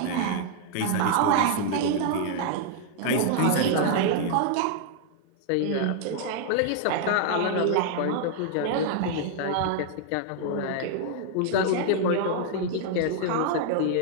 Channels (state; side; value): different; both; correlation 0.00